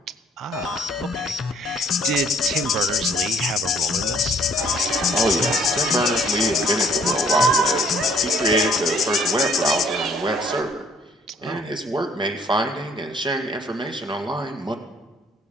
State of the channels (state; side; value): normal; both; correlation 0.60